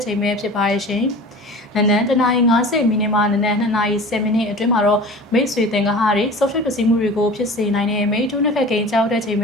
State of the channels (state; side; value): normal; both; correlation 0.38